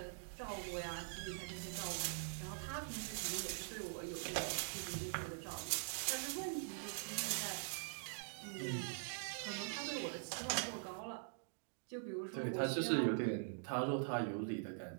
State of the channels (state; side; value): silent; left; digital silence